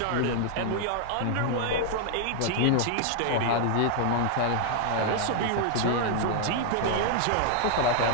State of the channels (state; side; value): different; both; correlation -0.01